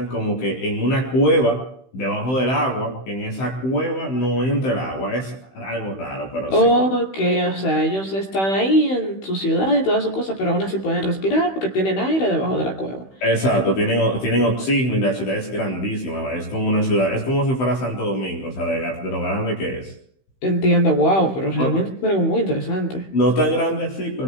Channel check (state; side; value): late; right; 16 ms